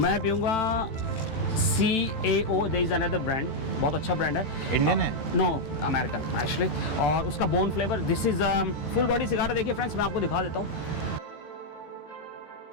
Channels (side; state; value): right; late; 14 ms